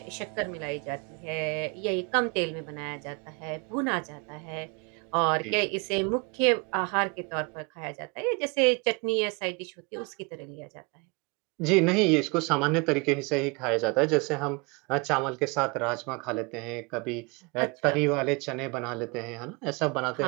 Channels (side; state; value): left; quieter; 29.8 dB